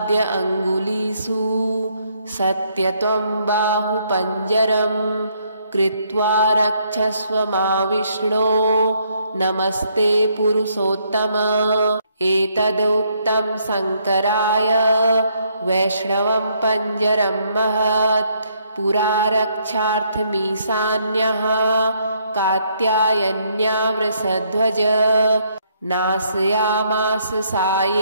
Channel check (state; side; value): inverted; both; correlation -0.71